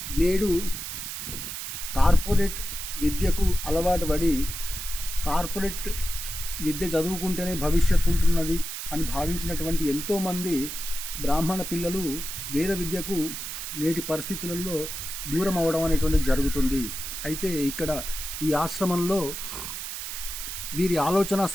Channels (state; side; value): noise; right; hiss, 6 dB below the sound